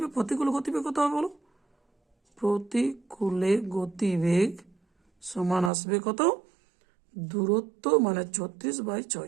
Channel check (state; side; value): drops out; left; at 5.7 s